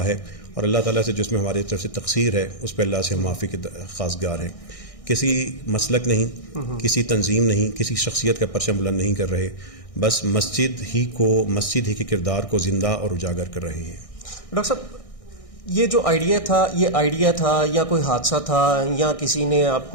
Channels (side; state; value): right; late; 1.6 ms